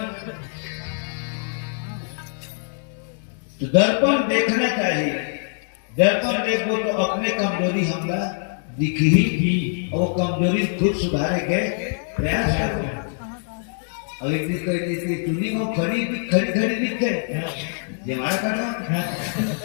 तो दर्पण देखना चाहिए। दर्पण देखो तो अपने कमजोरी हमला दिख ही और कमजोरी खुद सुधारे के प्रयास करो। और एक दिन कोई चुनी को खड़ी दिखते हमारा करना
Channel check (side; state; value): right; silent; 60 dB below the other